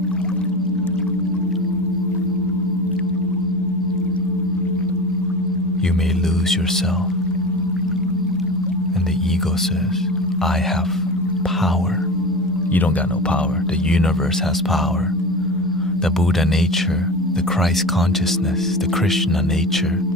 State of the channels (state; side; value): normal; both; correlation 0.30